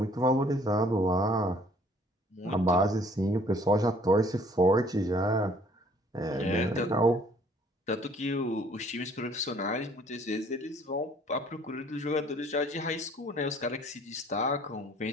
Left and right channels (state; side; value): normal; both; correlation 0.58